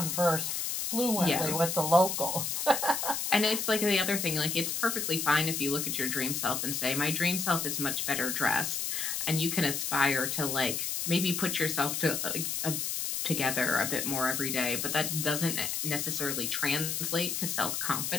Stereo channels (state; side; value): noise; left; hiss, 1 dB below the sound